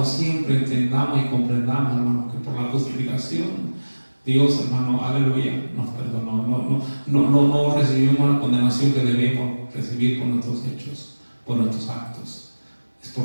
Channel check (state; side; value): inverted; both; correlation -1.00